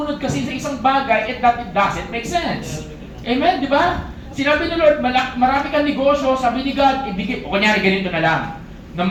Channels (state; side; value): identical; both; correlation 1.00